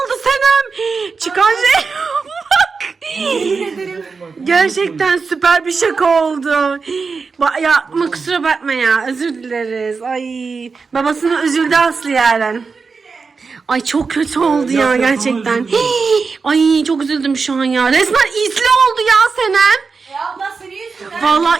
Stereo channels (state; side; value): quieter; left; 4.8 dB